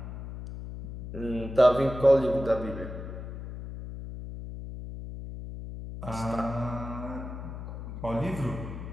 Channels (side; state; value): left; noise; hum, 9 dB below the sound